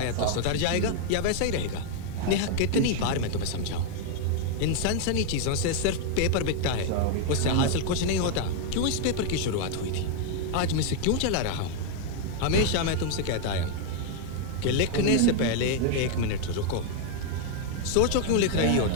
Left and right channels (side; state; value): both; different; correlation 0.00